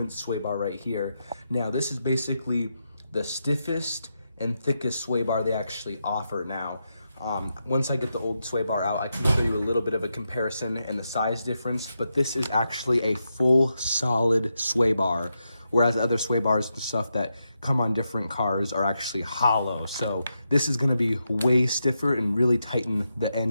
sway bar right here. Now, this is basically the stiffest and thickest sway bar they actually offer now. Once I get the old sway bar out, I can show you a little bit of a comparison and the size difference, but this is actually a full solid sway bar, whereas other sway bars and stuff that come on different cars are actually hollow. So this is gonna be way stiffer and really tighten the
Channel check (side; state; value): both; inverted; correlation -0.85